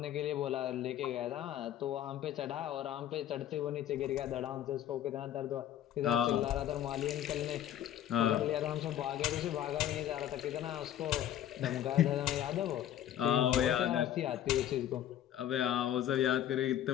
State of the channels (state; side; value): quieter; right; 11.4 dB